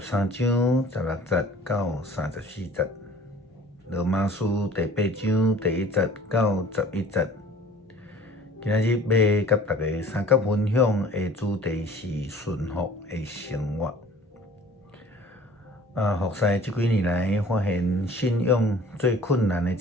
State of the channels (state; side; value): normal; both; correlation 0.48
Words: 章16节到34节。罗马书第8章第1节到11节。今仔日要甲大家三角分享的主题是顺服的生活。服侍这几年来，发现信仰最困难的一